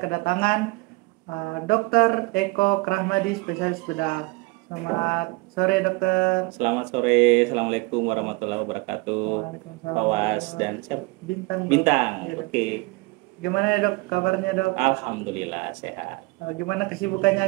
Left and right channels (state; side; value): quieter; left; 25.6 dB